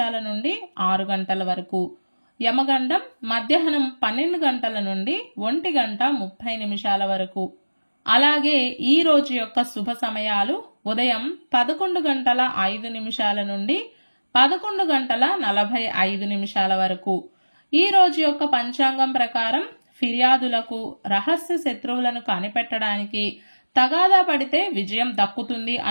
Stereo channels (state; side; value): inverted; both; correlation -1.00